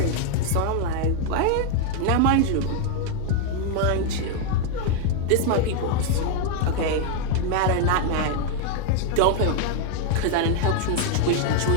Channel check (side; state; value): both; different; correlation 0.00